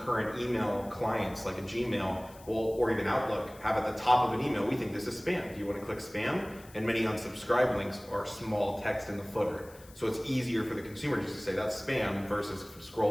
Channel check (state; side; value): noise; left; hiss, 23 dB below the sound